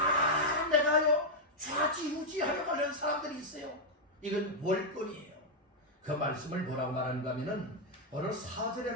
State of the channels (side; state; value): both; normal; correlation -0.02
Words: 내가요 좌지우지하려고 하는 사람들이 있어요. 이건 월권이에요. 그 말씀을 뭐라고 말하는가 하면은 오늘 4절의